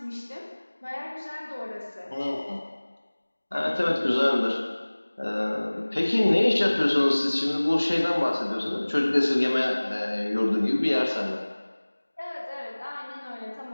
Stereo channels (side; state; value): both; inverted; correlation -1.00